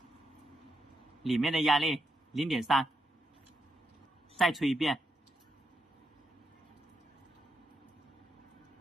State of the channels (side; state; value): both; normal; correlation 0.83